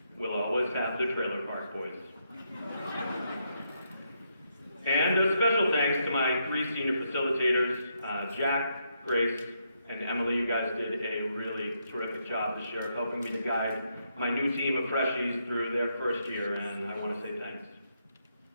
We'll always have the trailer park boys. And a special thanks to my 3 senior facilitators, Jack, Grace, and Emily. You guys did a really terrific job this year of helping me to guide my new team of freshies through their first year, and I want to say thanks.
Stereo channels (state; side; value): inverted; both; correlation -0.79